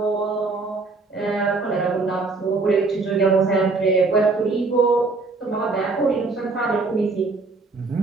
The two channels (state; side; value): quieter; left; 3.8 dB